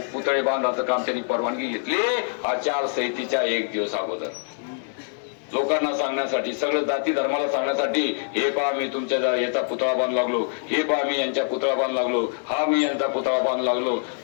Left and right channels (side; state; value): right; silent; 62 dB below the other